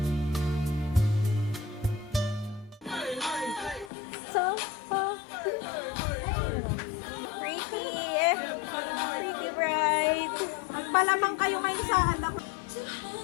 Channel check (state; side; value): drops out; right; at 3.9 s